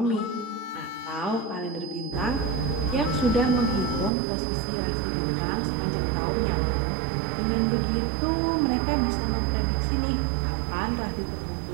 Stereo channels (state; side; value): drops out; left; at 4.1 s